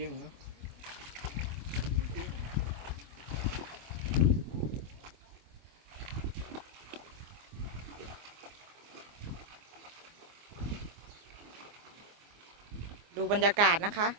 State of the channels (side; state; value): left; late; 24 ms